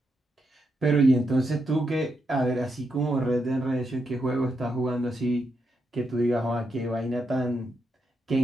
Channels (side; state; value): both; normal; correlation 0.82